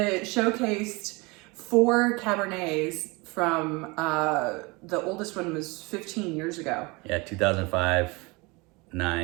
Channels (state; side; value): quieter; left; 26.1 dB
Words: showcased 4 Cabernets from the oldest one was 15 years ago. Yeah, 2005,